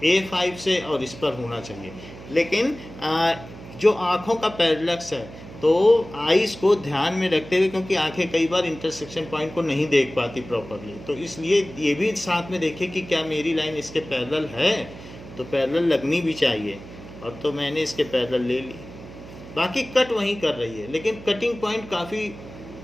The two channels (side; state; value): right; noise; hum, 15 dB below the sound